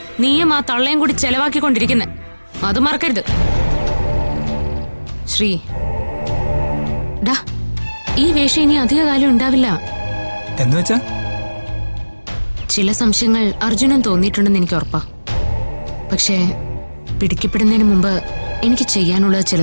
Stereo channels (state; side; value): inverted; both; correlation -1.00